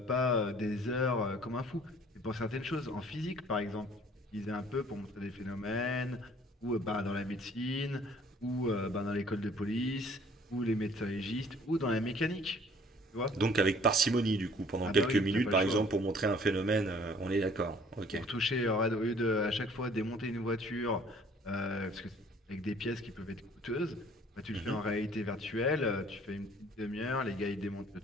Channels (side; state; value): both; normal; correlation 0.56